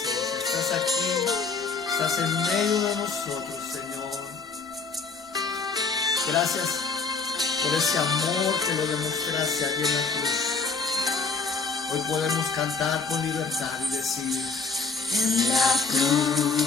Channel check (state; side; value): quieter; right; 4.5 dB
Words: Estás aquí, estás en medio de nosotros, Señor. Gracias por ese amor que lo demostraste allí en la cruz. Hoy podemos cantar con libertad y decir: En la